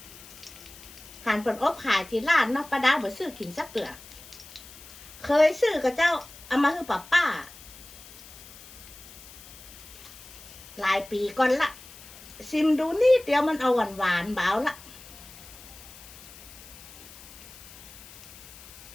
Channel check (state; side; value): noise; left; hiss, 18 dB below the sound